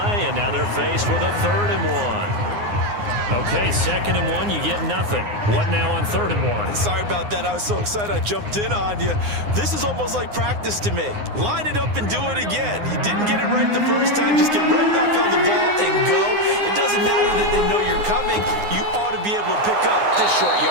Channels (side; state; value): left; late; 9.7 ms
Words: and now they're faced with a 3rd and 1. Okay, 2nd and 1, you get nothing. What now on 3rd and 1? Sorry about that. I was so excited I jumped in on you. This is almost like practice to me. Line it up and do it again. You didn't get it right the first time. Just get right back on the ball and go. It doesn't matter that they know you're coming. You ought to be able to pick up this short